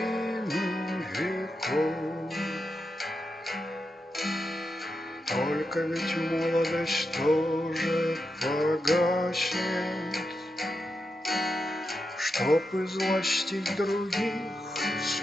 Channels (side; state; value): both; normal; correlation 0.87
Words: веков. Только ведь молодость тоже погаснет, чтоб излостить других